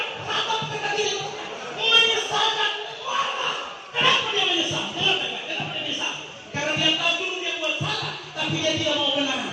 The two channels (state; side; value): identical; both; correlation 1.00